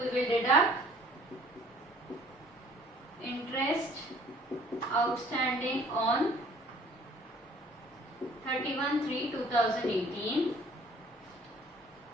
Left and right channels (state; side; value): normal; both; correlation 0.55